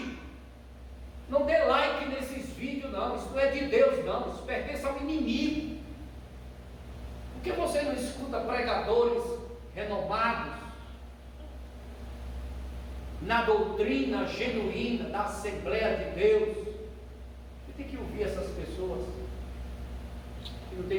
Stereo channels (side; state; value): both; identical; correlation 1.00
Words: Não dê like nesses vídeos não, isso não é de Deus não, isso pertence ao inimigo. Por que você não escuta pregadores renomados na doutrina genuína da Assembleia de Deus. Você tem que ouvir essas pessoas que não